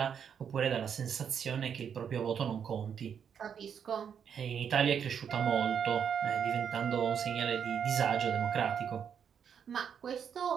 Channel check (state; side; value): quieter; left; 7.7 dB